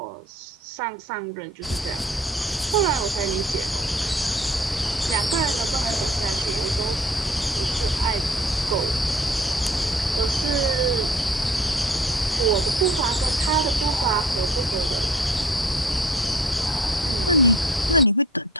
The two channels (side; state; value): both; normal; correlation 0.49